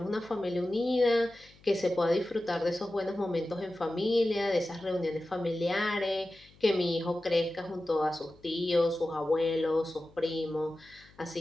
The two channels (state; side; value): noise; left; hum, 27 dB below the sound